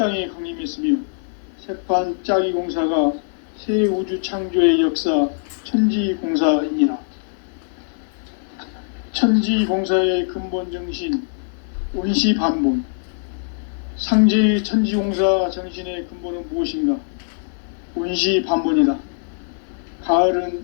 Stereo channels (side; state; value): right; silent; digital silence